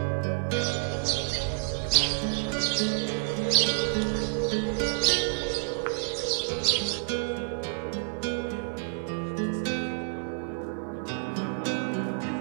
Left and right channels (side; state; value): left; silent; digital silence